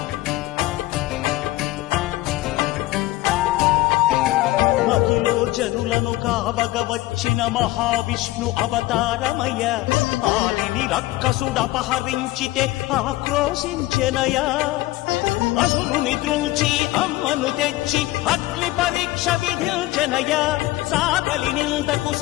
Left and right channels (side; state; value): right; quieter; 17.9 dB